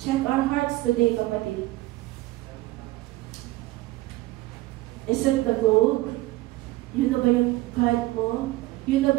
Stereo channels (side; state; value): left; quieter; 18.5 dB